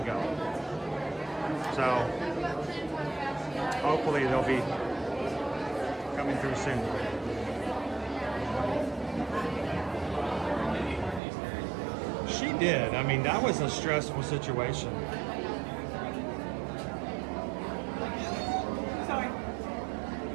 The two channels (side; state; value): left; drops out; at 11.2 s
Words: So hopefully they'll be coming through soon. She did. I mean, that was a stressful situation.